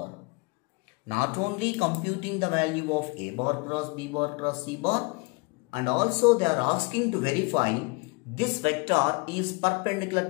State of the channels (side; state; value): right; quieter; 28.8 dB